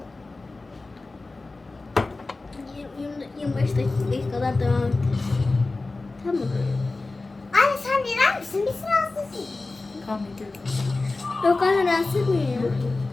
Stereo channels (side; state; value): right; quieter; 3.4 dB